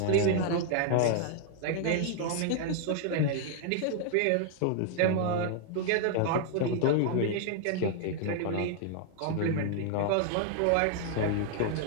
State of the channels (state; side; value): different; both; correlation 0.00